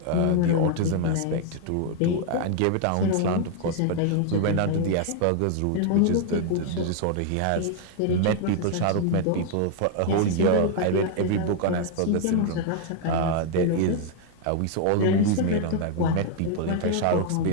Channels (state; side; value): different; both; correlation 0.00